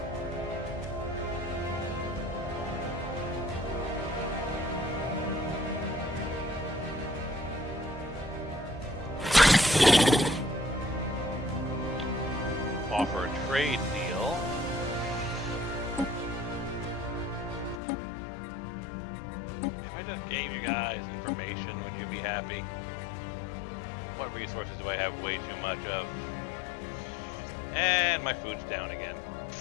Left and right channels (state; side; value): drops out; right; at 17.8 s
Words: Offer a trade deal. If I just gave you guys information, would you be happy? What resources do I have way too much of? And my food's down again.